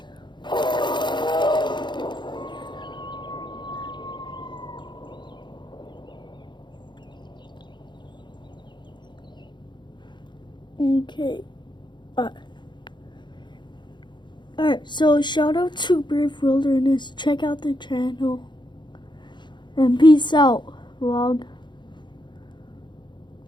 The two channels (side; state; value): right; late; 0.22 ms